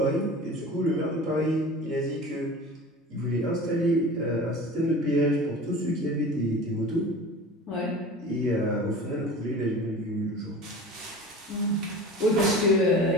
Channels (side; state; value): both; normal; correlation 0.37